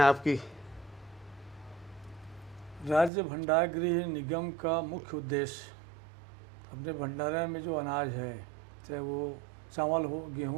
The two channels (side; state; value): left; drops out; at 3.1 s